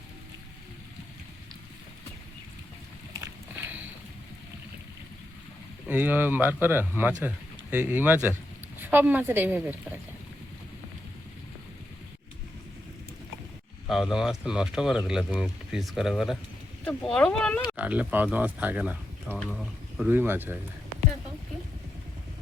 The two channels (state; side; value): normal; both; correlation 0.85